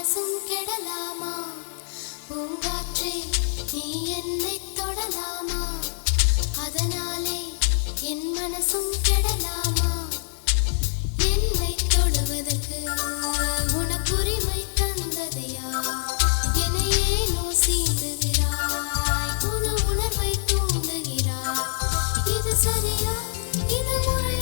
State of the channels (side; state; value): right; silent; digital silence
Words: கெடலாமா. பூங்காற்றே நீ என்னை தொடலாமா, அதனாலே என் மனசும் கெடலாமா. என்னை தொடுவதற்கு உனக்கு உரிமை தந்தது யார்? என்னை ஏனோ சீண்டுகிறாய், புது உணர்வை தூண்டுகிறாய். இது சரியா, இது